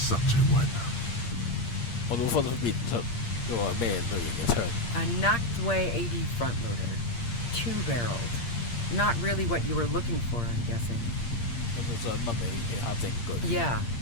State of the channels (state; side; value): late; right; 8.6 ms